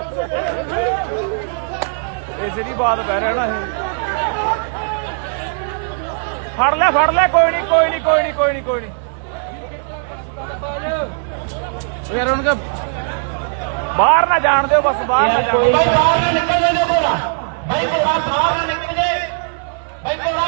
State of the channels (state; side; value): silent; left; 67 dB below the other